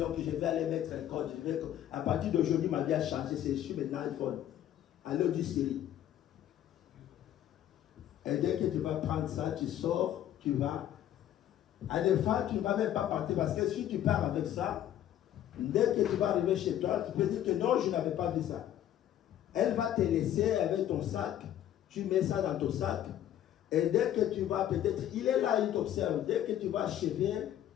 je vais aller mettre un code. À partir d'aujourd'hui, ma vie a changé. Je suis maintenant iPhone. Alors du Syrie. Et dès que tu vas prendre ça, tu sors, tu vas. À des fois, tu ne vas même pas partir parce que si tu pars avec ça, dès que tu vas arriver chez toi, tu peux dire que non, je n'avais pas vu ça. Elle va te laisser avec ton sac, tu mets ça dans ton sac, et dès que tu vas peut-être, il est là, il t'observe, dès que tu vas achever,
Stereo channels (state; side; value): quieter; right; 11.5 dB